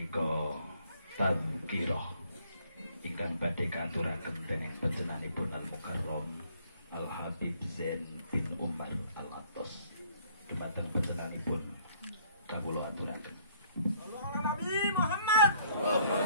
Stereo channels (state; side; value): inverted; both; correlation -0.62